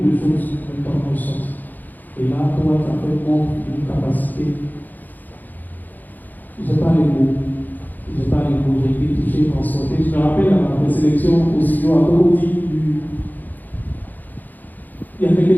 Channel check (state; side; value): late; right; 0.085 ms